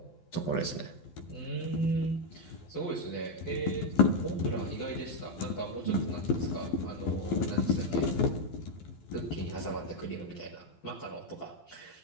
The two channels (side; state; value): right; late; 12 ms